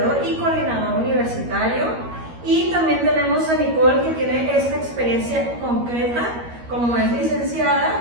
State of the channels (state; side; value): late; left; 13 ms